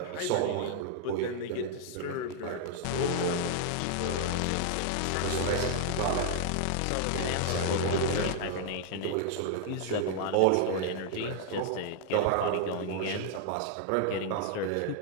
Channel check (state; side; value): different; both; correlation -0.01